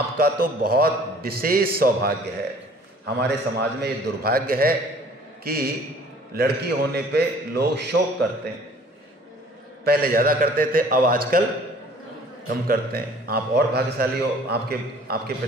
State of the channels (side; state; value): both; normal; correlation 0.53